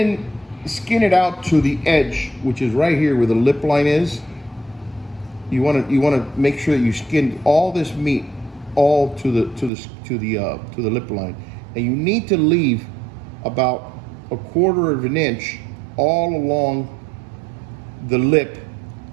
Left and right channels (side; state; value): left; drops out; at 9.7 s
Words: it out to the edge, which is right here where the lip line is. You want to make sure that you skin all this meat all to the lip line, and you need to leave about 1/4 of an inch all along the lip.